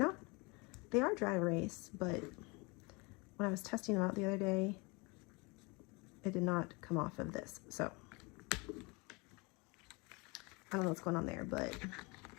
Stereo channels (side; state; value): right; quieter; 27.7 dB